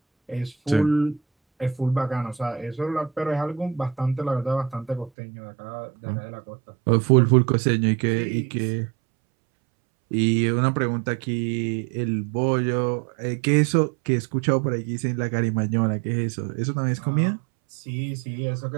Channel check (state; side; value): drops out; left; at 5.1 s